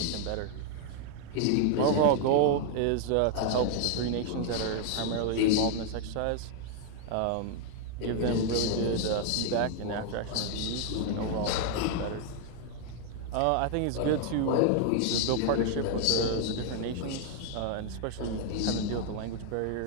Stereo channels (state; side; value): different; both; correlation 0.00